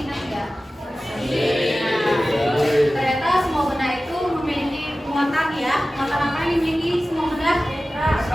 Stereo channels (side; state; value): both; normal; correlation 0.96